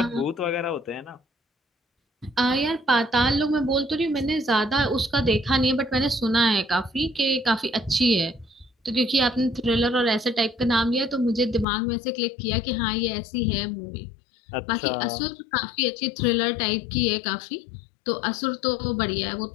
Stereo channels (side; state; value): right; drops out; at 11.7 s